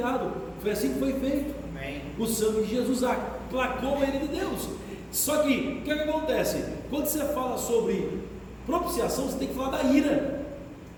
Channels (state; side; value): identical; both; correlation 1.00